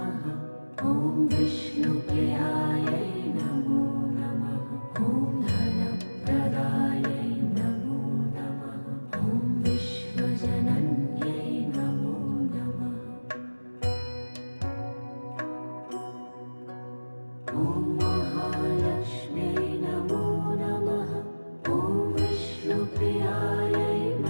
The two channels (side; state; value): both; inverted; correlation -1.00